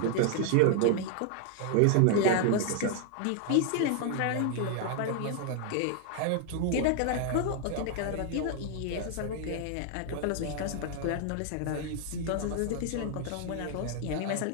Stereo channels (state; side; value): different; both; correlation 0.00